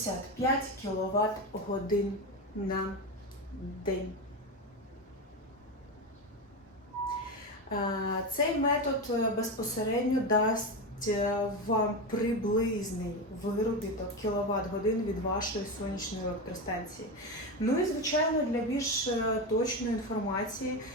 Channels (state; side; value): normal; both; correlation 0.17